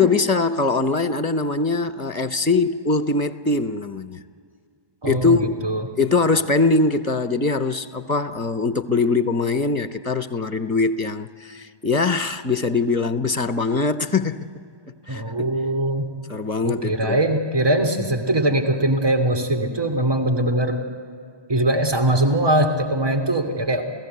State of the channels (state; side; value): late; left; 1.2 ms